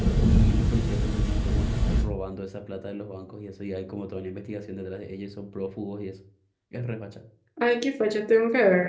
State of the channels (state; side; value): identical; both; correlation 1.00